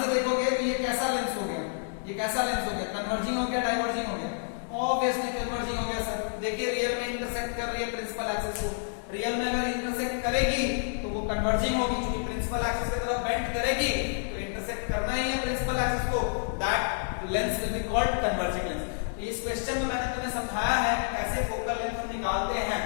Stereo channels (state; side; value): silent; right; 59 dB below the other